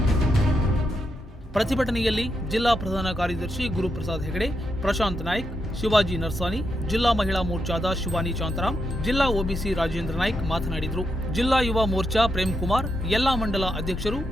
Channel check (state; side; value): normal; both; correlation 0.83